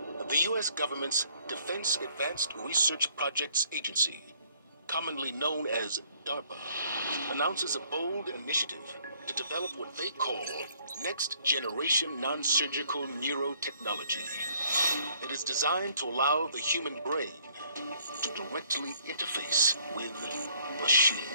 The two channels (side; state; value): both; inverted; correlation -0.62